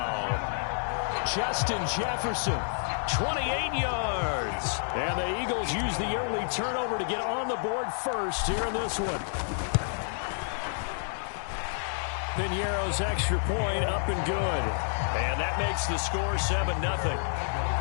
Justin Jefferson, 28 yards. And the Eagles use the early turnover to get on the board first here in this one. Piñeiro's extra point up and good. And that makes the score 7-0.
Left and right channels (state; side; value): silent; right; digital silence